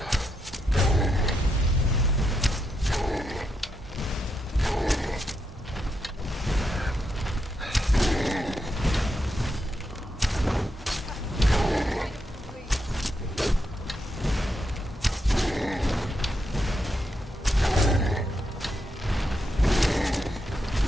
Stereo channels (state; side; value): normal; both; correlation 0.82